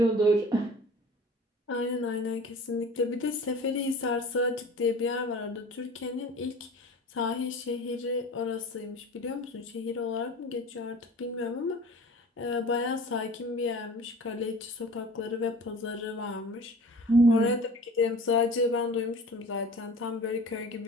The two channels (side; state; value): both; normal; correlation 0.42